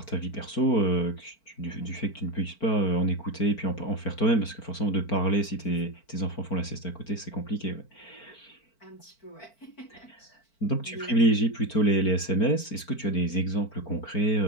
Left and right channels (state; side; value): late; right; 4.5 ms